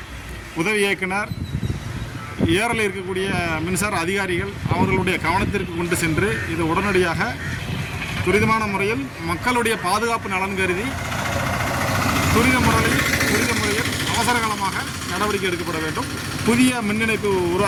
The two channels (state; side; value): identical; both; correlation 1.00